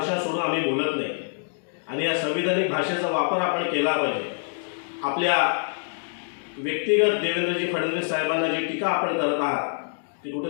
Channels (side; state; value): right; silent; digital silence